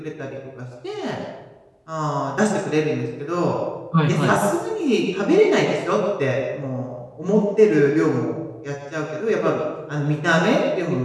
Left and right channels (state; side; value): identical; both; correlation 1.00